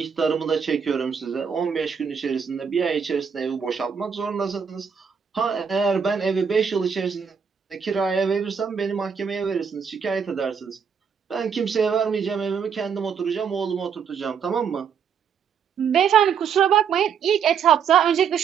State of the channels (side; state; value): left; quieter; 6.9 dB